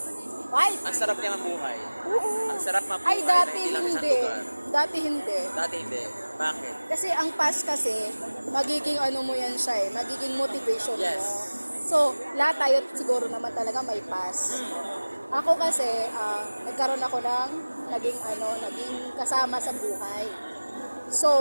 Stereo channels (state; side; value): inverted; both; correlation -1.00